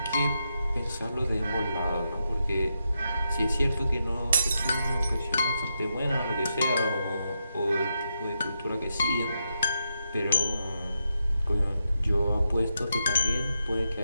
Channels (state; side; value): inverted; both; correlation -0.84